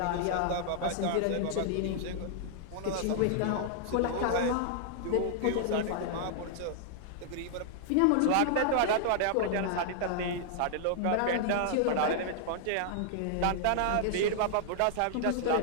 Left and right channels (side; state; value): both; different; correlation -0.01